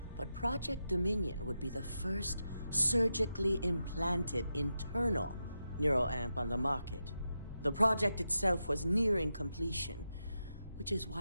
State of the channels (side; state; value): both; inverted; correlation -0.88